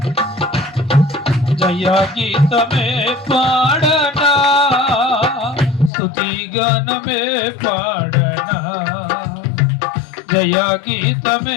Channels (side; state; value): right; drops out; at 5.9 s